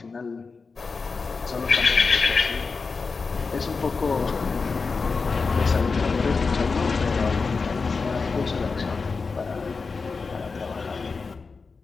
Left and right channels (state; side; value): quieter; right; 4.6 dB